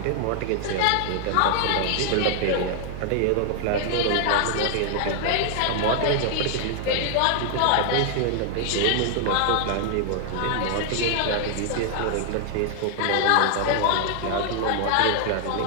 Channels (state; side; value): different; both; correlation 0.00